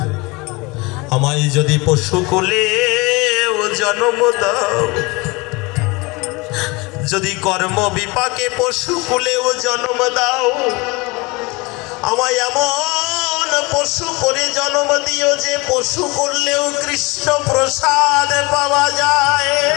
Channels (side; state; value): right; quieter; 25.5 dB